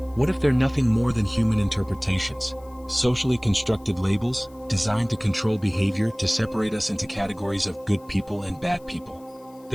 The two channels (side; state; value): left; noise; hiss, 29 dB below the sound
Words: What if they're nothing more than human interpretations, socially constructed labels, designed to control behavior, to separate us into categories of good people and bad people?